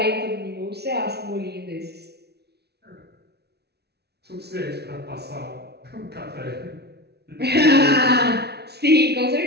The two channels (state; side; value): late; left; 0.48 ms